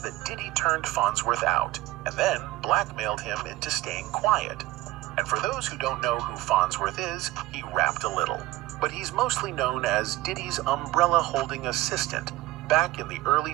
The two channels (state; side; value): quieter; left; 17.5 dB